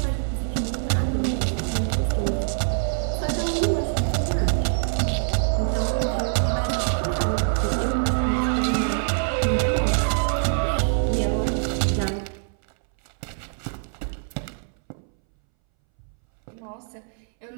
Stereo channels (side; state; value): left; silent; 62 dB below the other